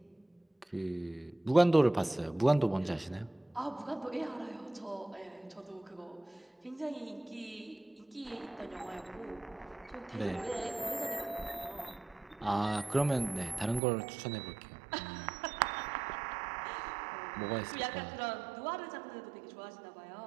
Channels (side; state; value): left; drops out; at 13.8 s